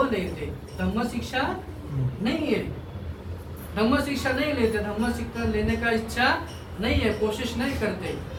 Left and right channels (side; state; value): both; identical; correlation 1.00